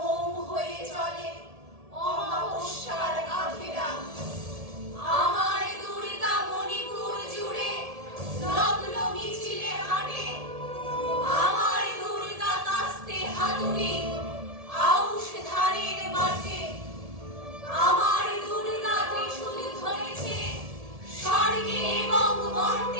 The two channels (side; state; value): left; late; 1.7 ms